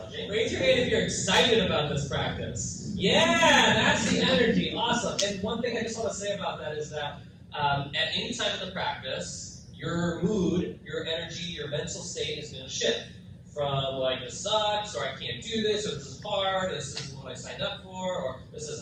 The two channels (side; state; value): both; identical; correlation 1.00